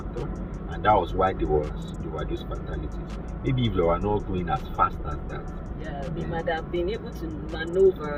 and that was why there were those fatalities. Maybe if they were not going as fast as that, they might have been able to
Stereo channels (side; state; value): both; identical; correlation 1.00